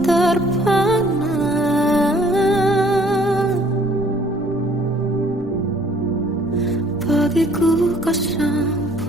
terpana. Bagiku kau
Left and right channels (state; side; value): normal; both; correlation 0.59